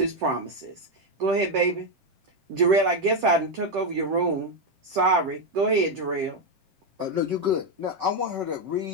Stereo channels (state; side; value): late; left; 7.6 ms